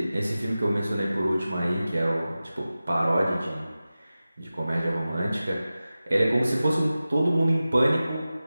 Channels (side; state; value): both; inverted; correlation -0.95